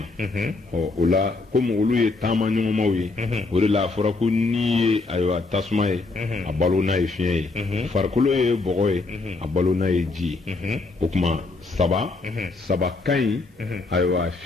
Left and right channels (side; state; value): right; quieter; 3.6 dB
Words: o la komi olu ye taama ɲɔgɔnmaw ye o de la a fɔra ko n'i ye ayiwa tasuma ye a balo n'a ye fiɲɛ ye farikolo ye bɔgɔ ye a balo n'a ye ji ye o tuma saba ka ɲi ayiwa